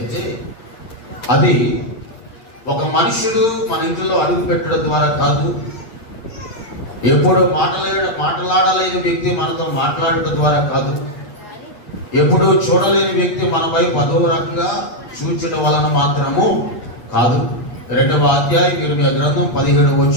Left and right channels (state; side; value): late; right; 8.8 ms